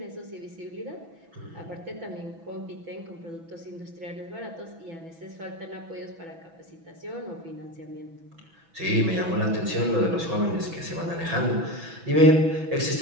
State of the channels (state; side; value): late; left; 6.1 ms